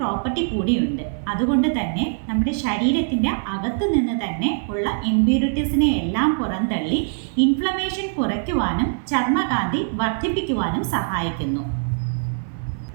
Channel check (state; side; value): silent; left; 57 dB below the other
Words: കൂടിയുണ്ട്. അതുകൊണ്ട് തന്നെ നമ്മുടെ ശരീരത്തിൻ്റെ അകത്ത് നിന്ന് തന്നെ ഉള്ള ഇംപ്യൂരിറ്റീസിനെ എല്ലാം പുറന്തള്ളി ഇൻഫ്ലമേഷൻ കുറയ്ക്കുവാനും ചർമ്മകാന്തി വർദ്ധിപ്പിക്കുവാനും സഹായിക്കുന്നു.